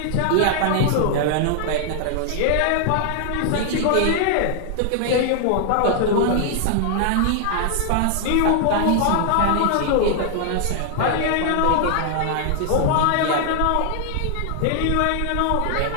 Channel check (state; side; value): different; both; correlation 0.00